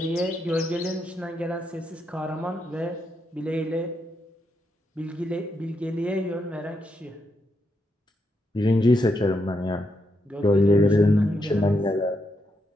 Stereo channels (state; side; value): normal; both; correlation 0.81